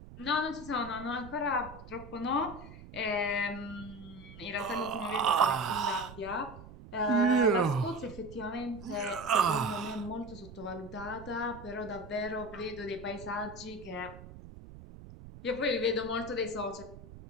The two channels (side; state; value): right; noise; rumble, 16 dB below the sound